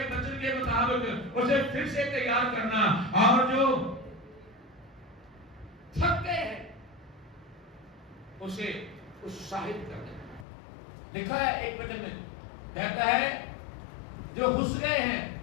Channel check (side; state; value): right; drops out; at 10.5 s